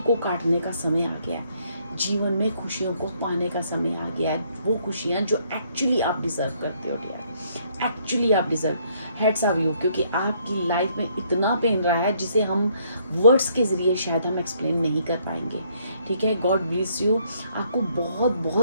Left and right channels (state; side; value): inverted; both; correlation -0.68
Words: काटने का समय आ गया है। जीवन में खुशियों को पाने का समय आ गया है, वो खुशियाँ जो एक्चुअली आप डिज़र्व करते हो डियर, एक्चुअली आप डिज़र्व। हेड्स ऑफ यू, क्योंकि आपकी लाइफ में इतना पेन रहा है जिसे हम वर्ड्स के ज़रिए शायद हम एक्सप्लेन नहीं कर पाएंगे। ठीक है, गॉड ब्लेस यू, आपको बहुत